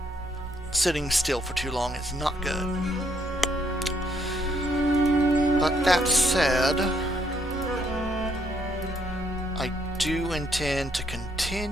Sitting still for too long is not good. But that said, I do intend to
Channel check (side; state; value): right; noise; hum, 16 dB below the sound